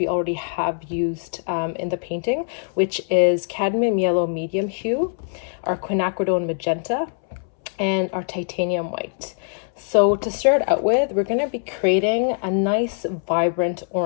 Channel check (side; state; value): right; silent; 64 dB below the other